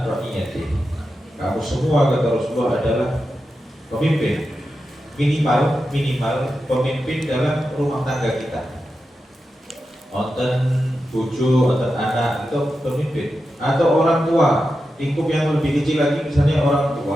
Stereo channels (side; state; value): both; normal; correlation 0.90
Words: ra'iyatihi. Kamu semua, kata Rasulullah, adalah pemimpin, minimal pemimpin dalam rumah tangga kita. Onten bojo, onten anak itu pemimpin, atau orang tua, lingkup yang lebih kecil lagi misalnya orang